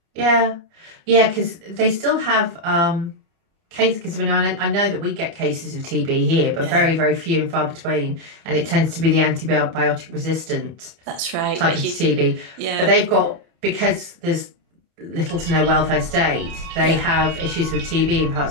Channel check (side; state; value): left; late; 31 ms